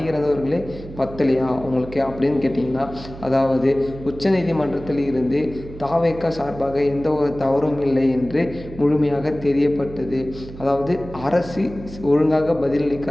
இறந்தவர்களே பத்தலையா உங்களுக்கு அப்படின்னு கேட்டிங்கன்னா, அதாவது உச்சநீதிமன்றத்தில் இருந்து தாவேக சார்பாக எந்த ஒரு தவறும் இல்லை என்று முழுமையாக தெரியப்பட்டது. அதாவது அரசு ஒழுங்காக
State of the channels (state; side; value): noise; right; hum, 14 dB below the sound